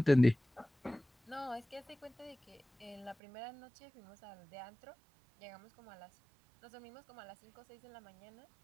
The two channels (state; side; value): drops out; left; at 3.2 s